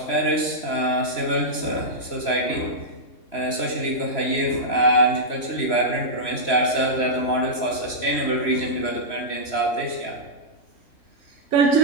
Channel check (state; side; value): late; right; 3.0 ms